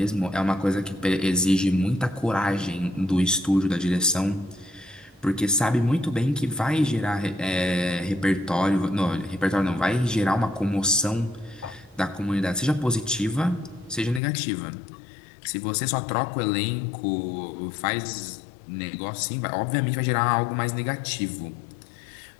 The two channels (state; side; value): drops out; right; at 14.2 s